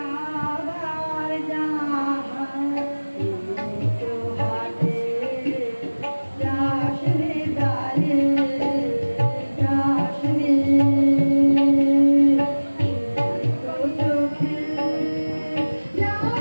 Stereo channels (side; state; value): both; inverted; correlation -1.00